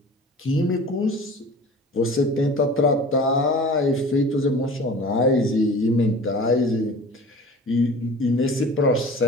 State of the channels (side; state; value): both; normal; correlation 0.40